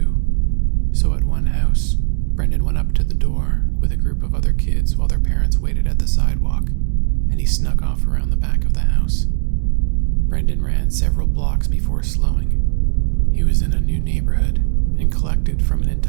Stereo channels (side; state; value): left; silent; digital silence